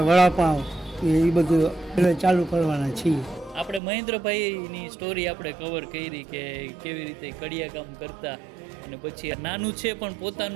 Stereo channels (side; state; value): left; drops out; at 3.8 s